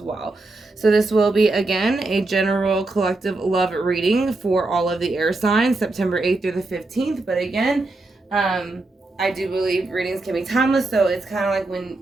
So this will be, again, a general collective love reading for all of the air signs, September 8th through the 15th. But again, I do believe readings can be timeless, so it's kind of like when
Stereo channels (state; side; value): quieter; left; 3.1 dB